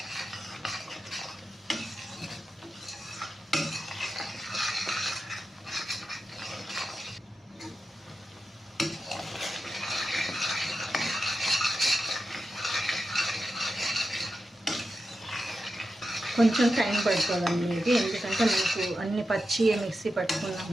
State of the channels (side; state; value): both; normal; correlation 0.90